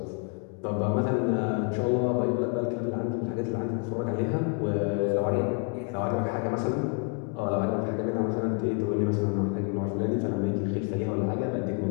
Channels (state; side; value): quieter; right; 33.1 dB